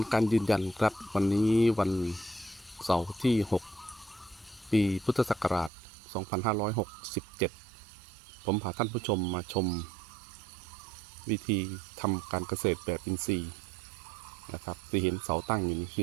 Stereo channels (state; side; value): drops out; left; at 5.7 s